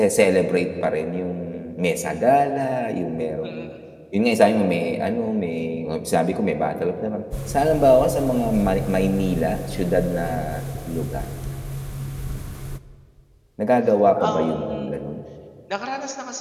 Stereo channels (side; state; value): both; identical; correlation 1.00